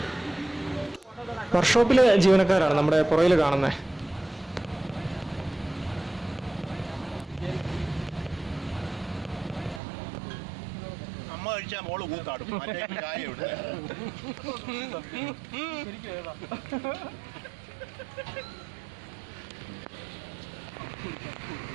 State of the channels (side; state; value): left; drops out; at 9.8 s